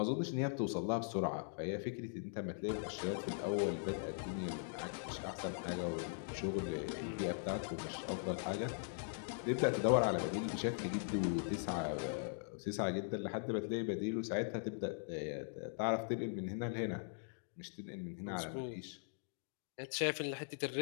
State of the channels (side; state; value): right; silent; digital silence